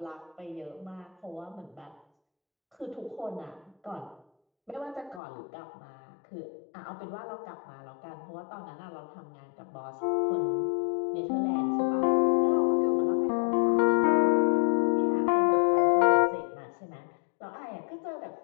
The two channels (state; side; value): drops out; right; at 5.2 s